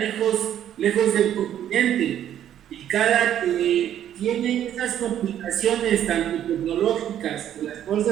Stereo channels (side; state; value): left; quieter; 10.7 dB